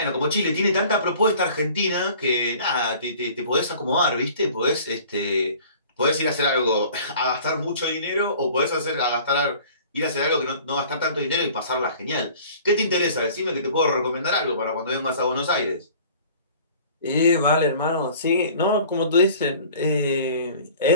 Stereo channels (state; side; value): inverted; both; correlation -0.48